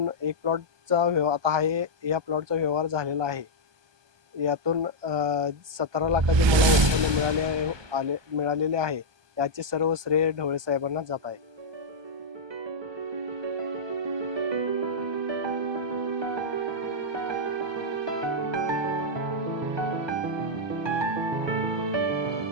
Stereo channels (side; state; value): left; late; 1.2 ms